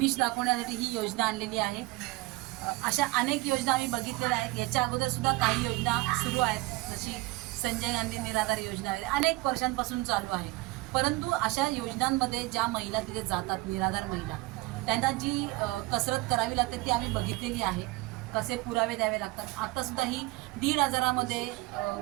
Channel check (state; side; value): quieter; left; 21.5 dB